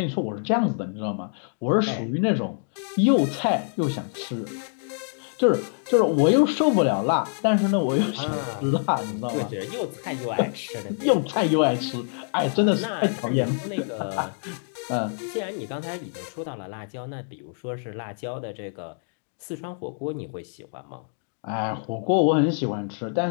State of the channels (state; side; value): silent; right; 60 dB below the other